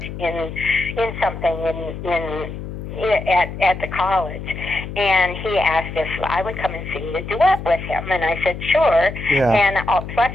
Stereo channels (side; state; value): left; noise; hum, 9 dB below the sound